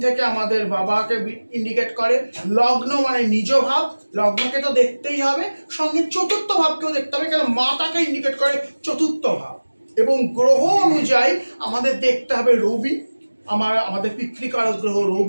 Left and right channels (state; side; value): inverted; both; correlation -1.00